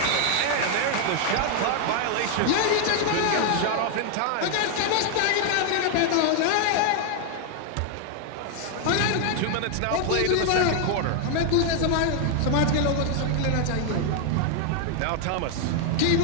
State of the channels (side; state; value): both; different; correlation 0.00